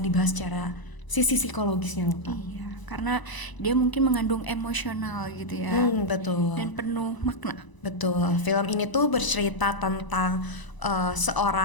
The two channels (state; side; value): late; right; 1.0 ms